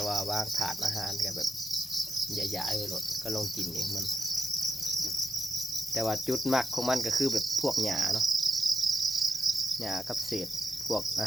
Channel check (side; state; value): both; normal; correlation 0.85